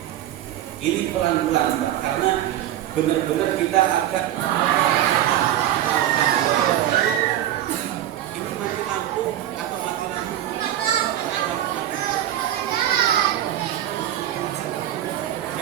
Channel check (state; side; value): quieter; left; 12.4 dB